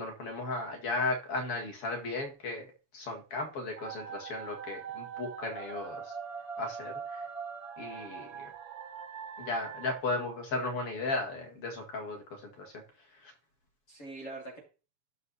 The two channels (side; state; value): right; late; 7.1 ms